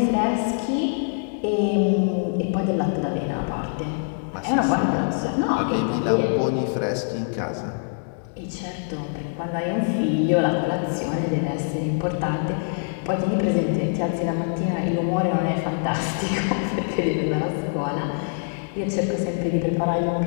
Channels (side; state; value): right; silent; 62 dB below the other